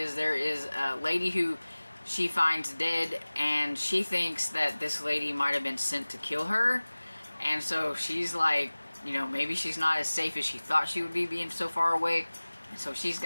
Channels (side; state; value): both; inverted; correlation -1.00